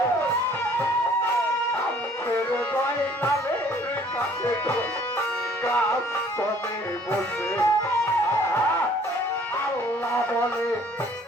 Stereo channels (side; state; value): both; normal; correlation 0.57